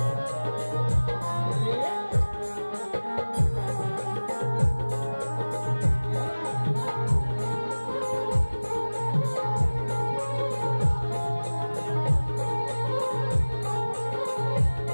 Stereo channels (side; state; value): both; inverted; correlation -1.00